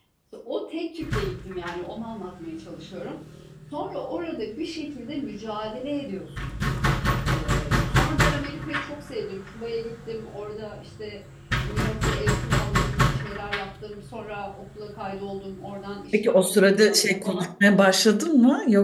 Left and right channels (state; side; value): identical; both; correlation 1.00